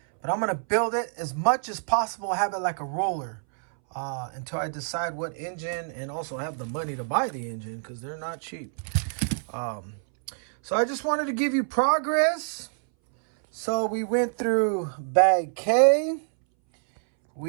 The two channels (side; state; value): left; silent; 60 dB below the other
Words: But I'm going to build it as much as possible. Have it like a roller until I decide what engine, and also have the money to buy the engine, because they're not cheap. So I just wanted to give you progress. So we went through bag K.